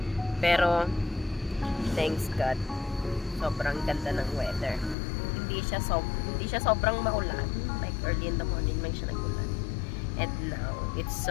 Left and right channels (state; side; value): drops out; right; at 5.0 s